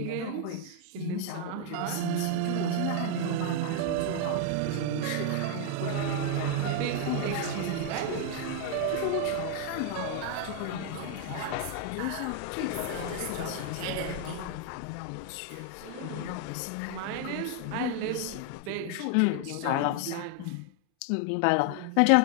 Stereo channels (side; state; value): both; different; correlation 0.00